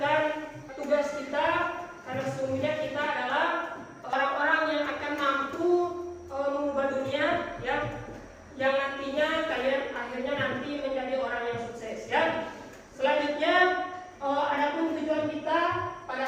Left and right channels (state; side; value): identical; both; correlation 1.00